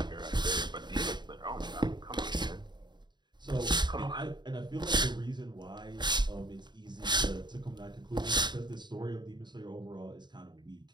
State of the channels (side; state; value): left; late; 0.21 ms